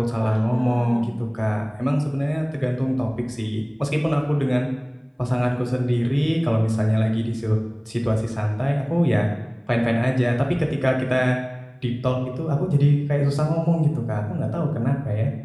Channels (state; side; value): identical; both; correlation 1.00